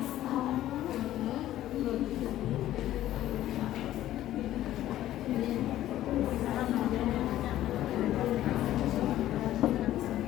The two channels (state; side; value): quieter; right; 13.5 dB